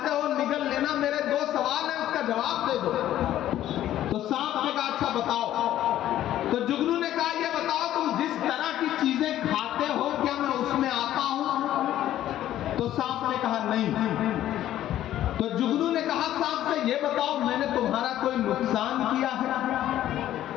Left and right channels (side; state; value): right; quieter; 12.6 dB